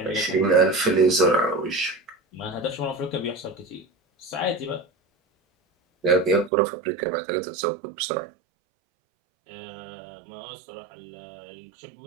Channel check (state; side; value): drops out; left; at 6.5 s